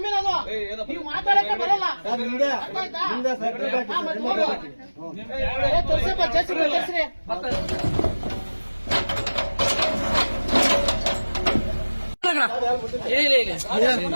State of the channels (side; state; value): both; inverted; correlation -1.00